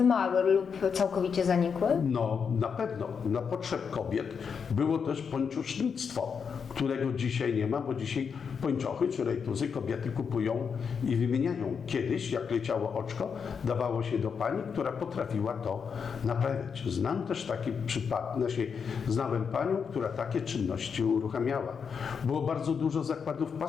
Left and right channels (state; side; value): quieter; right; 6.3 dB